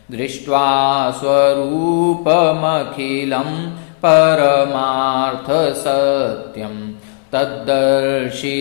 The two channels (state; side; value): silent; right; 70 dB below the other